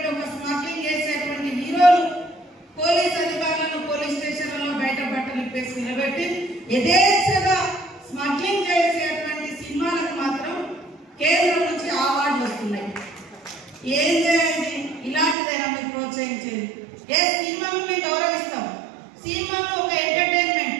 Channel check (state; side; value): drops out; left; at 15.4 s